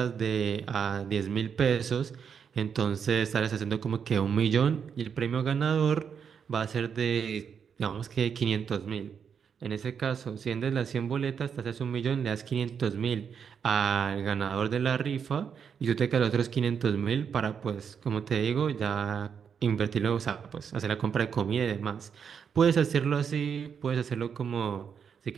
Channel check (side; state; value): left; quieter; 7.1 dB